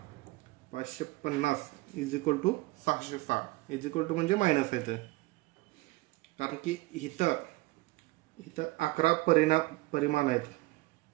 550 is equal to 606 is equal to म्हणजे मायनस आहे ते, कारण की इथं 11 परिमाण आहेत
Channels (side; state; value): left; quieter; 21.5 dB